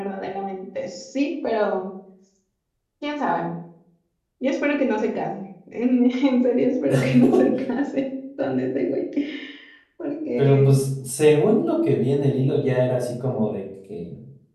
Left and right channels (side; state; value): both; identical; correlation 1.00